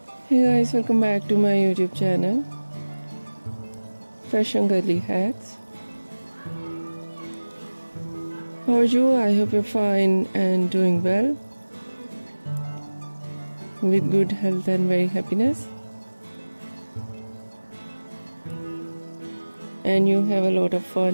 Hey guys, welcome back to my YouTube channel, Fashion Girly Hacks. How are you? I hope you're fine and doing well, with good health and very happiness. And you have a lot of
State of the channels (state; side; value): inverted; both; correlation -1.00